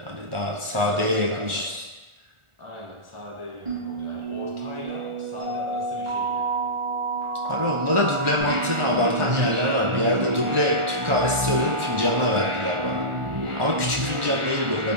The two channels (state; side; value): late; left; 1.4 ms